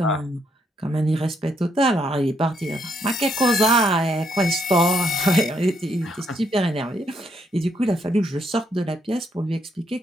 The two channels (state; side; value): normal; both; correlation 0.74